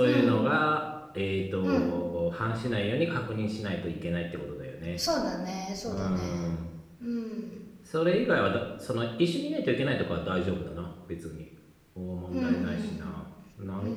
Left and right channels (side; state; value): both; identical; correlation 1.00